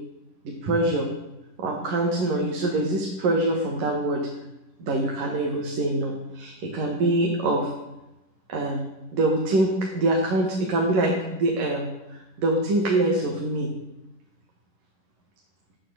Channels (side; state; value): left; late; 10 ms